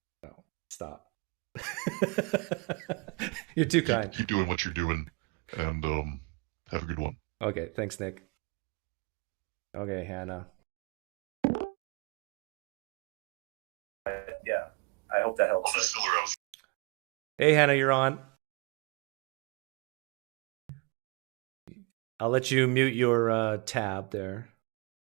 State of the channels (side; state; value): left; quieter; 29.7 dB